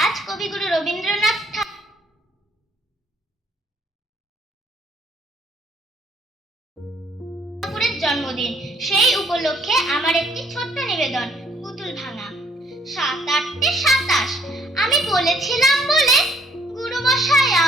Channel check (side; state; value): both; normal; correlation 0.64